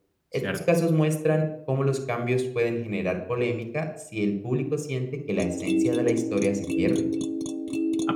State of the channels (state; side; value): identical; both; correlation 1.00